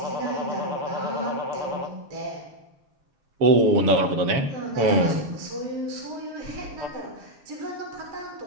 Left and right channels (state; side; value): late; left; 7.2 ms